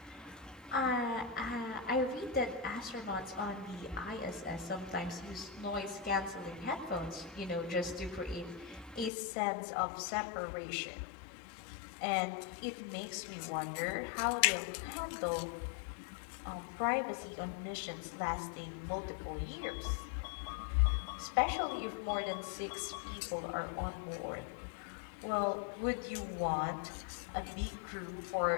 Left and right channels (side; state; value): right; drops out; at 9.1 s